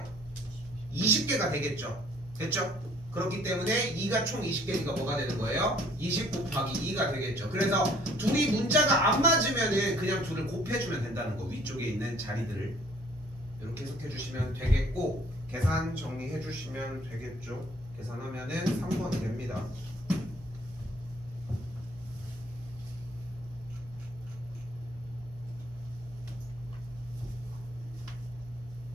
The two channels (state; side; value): noise; right; hum, 18 dB below the sound